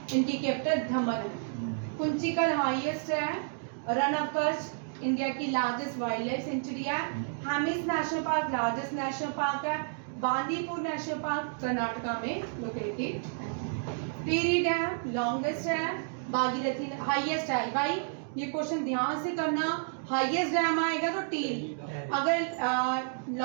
इनकी कैपिटल दमन है। कुंचिकल हाईएस्ट है। रन ऑफ कच्छ इंडिया की लार्जेस्ट वाइल्ड लाइफ सेंचुरी है। Hemis national park largest national park है। बांदीपुर नेशनल पार्क कर्नाटका में लोकेटेड है। टिहरी डैम लॉन्गेस्ट है। भागीरथी हाईएस्ट है। भाई ये क्वेश्चन ध्यान से करना, हाईएस्ट डैम आएगा तो टिहरी, अगर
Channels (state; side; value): silent; left; digital silence